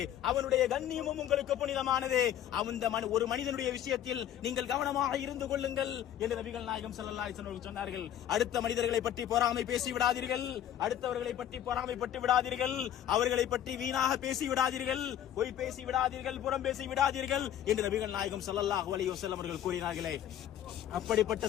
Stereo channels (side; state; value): right; quieter; 10.9 dB